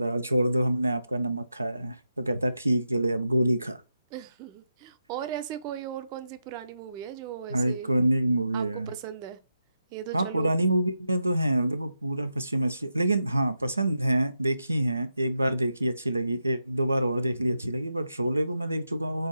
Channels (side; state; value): both; inverted; correlation -0.87